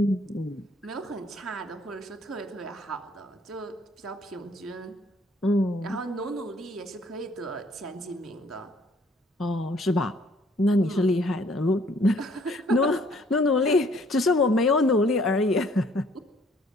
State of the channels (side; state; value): both; normal; correlation 0.60